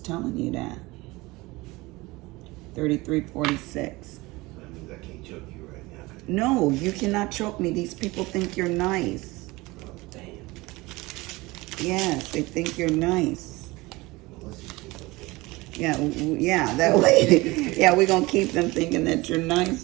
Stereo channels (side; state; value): left; quieter; 21.8 dB